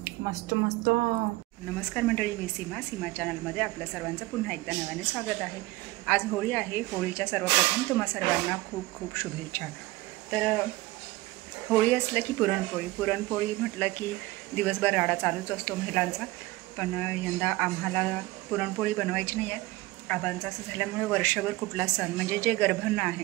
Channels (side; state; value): left; quieter; 19.9 dB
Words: मस्त मस्त. नमस्कार मंडळी, मी सीमा चॅनलमध्ये आपल्या सर्वांचं पुन्हा एकदा नव्याने स्वागत आहे. आज होळी आहे. होळीच्या सर्वप्रथम तुम्हा सर्वांना खूप खूप शुभेच्छा. तर होळी असलं की पुरणपोळी म्हटलं की दिवसभर राडा चालूच असतो महिलांचा. पण यंदा आम्हाला पुरणपोळी बनवायची नाही आहे. आबांचं असं झाल्यामुळे वर्षभर कुठला सण म्हणजे जे गर्भांना